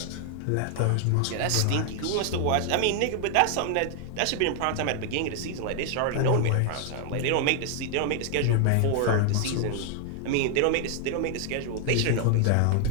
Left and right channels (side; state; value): both; different; correlation 0.00